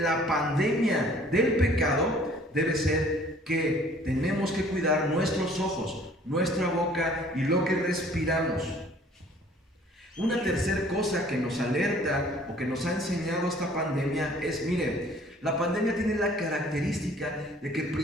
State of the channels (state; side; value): normal; both; correlation 0.55